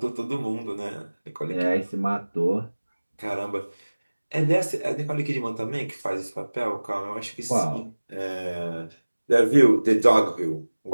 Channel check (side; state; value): both; inverted; correlation -1.00